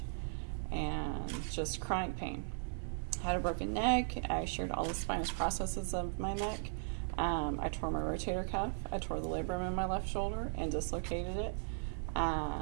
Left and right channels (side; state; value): left; silent; digital silence